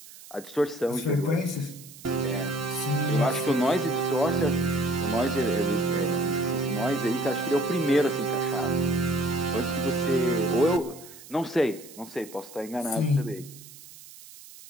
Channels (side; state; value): right; noise; hiss, 19 dB below the sound